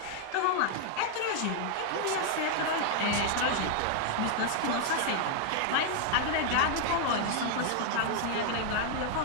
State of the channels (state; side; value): different; both; correlation 0.00